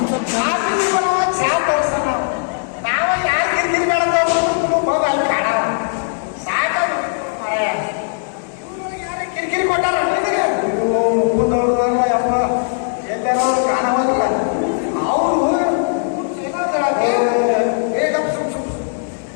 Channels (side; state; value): right; silent; digital silence